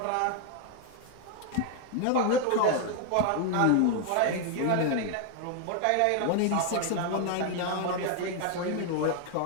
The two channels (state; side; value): different; both; correlation 0.00